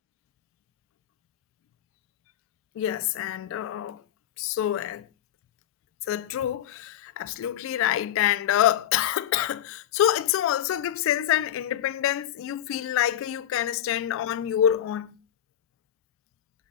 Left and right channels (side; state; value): right; quieter; 11.2 dB